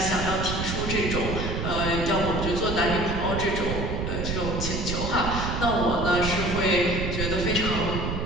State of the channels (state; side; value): noise; right; rumble, 3 dB below the sound